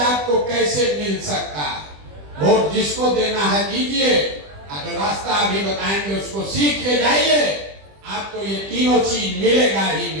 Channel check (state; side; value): late; left; 20 ms